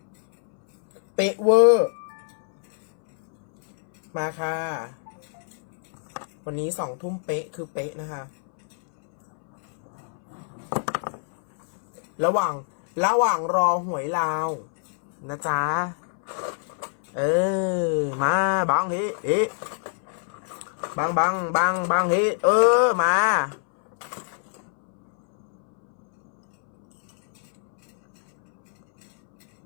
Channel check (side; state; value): right; silent; 62 dB below the other